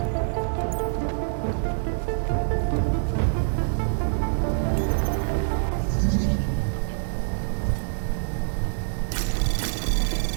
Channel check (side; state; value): left; silent; digital silence